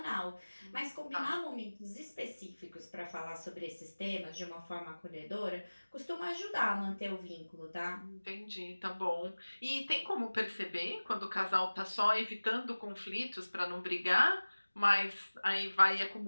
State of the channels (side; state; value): both; inverted; correlation -1.00